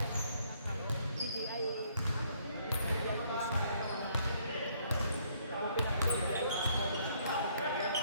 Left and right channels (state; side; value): inverted; both; correlation -0.66